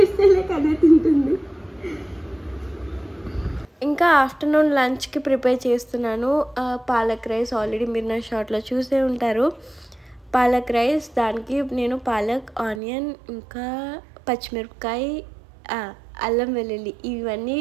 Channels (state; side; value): drops out; left; at 12.8 s